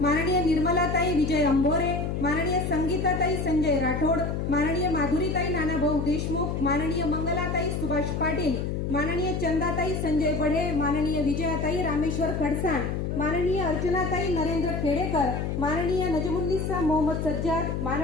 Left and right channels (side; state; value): left; noise; hum, 2 dB below the sound